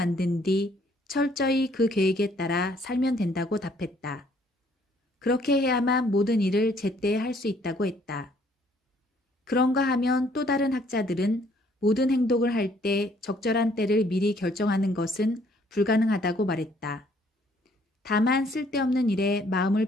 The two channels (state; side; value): normal; both; correlation 0.63